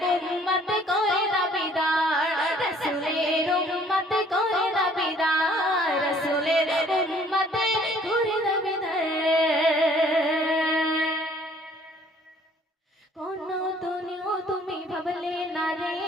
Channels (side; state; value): both; normal; correlation 0.58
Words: উম্মত করে দাবিদার, রাসূলের উম্মত করে দাবিদার, রাসূলের উম্মত করে দাবিদার। কোন দুনিয়া তুমি ভাবলে না রে,